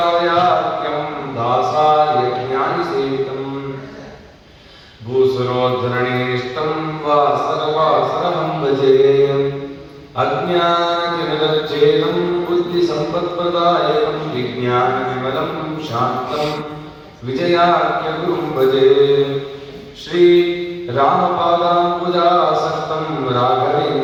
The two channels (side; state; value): both; identical; correlation 1.00